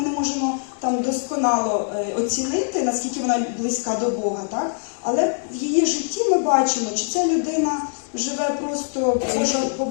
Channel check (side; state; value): right; silent; digital silence